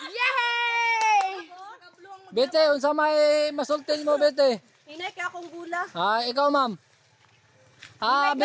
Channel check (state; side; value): identical; both; correlation 1.00